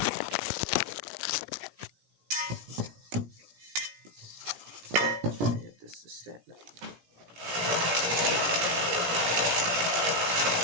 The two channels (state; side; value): late; left; 17 ms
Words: Get this to stand up.